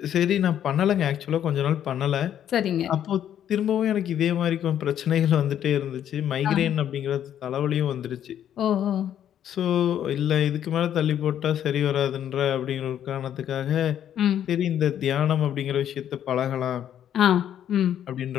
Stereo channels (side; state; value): right; quieter; 10.2 dB